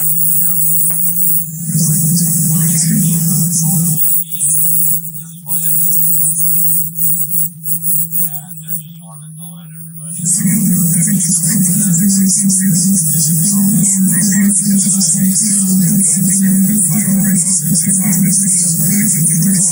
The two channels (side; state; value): both; identical; correlation 1.00